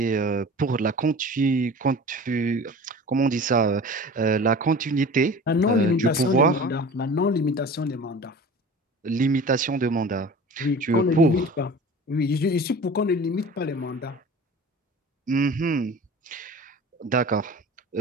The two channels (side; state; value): both; normal; correlation 0.39